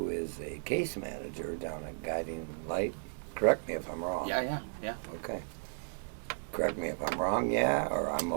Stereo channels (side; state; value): left; silent; digital silence